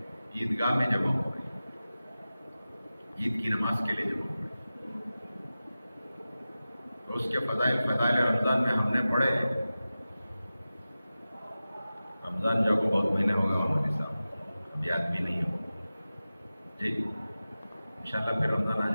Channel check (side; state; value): both; inverted; correlation -0.95